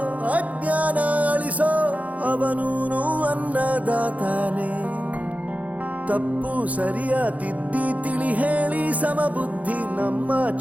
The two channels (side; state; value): left; late; 0.071 ms